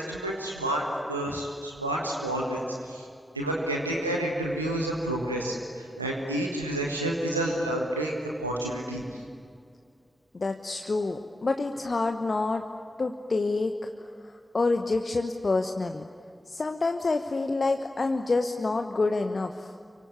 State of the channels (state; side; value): normal; both; correlation 0.76